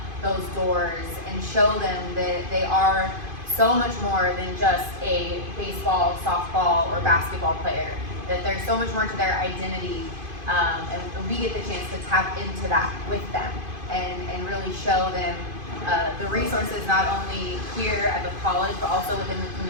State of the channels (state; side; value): late; left; 2.5 ms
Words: those doors and show them that they are so much more than just a baseball, softball, or basketball player. That there's so much more to their identity, and we get the chance to tap into that with them and really show them the resources not only here at the college but also within the